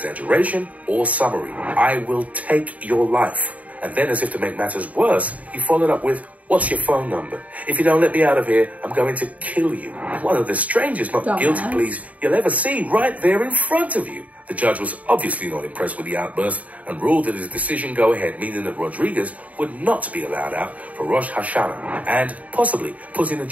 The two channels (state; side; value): late; left; 0.070 ms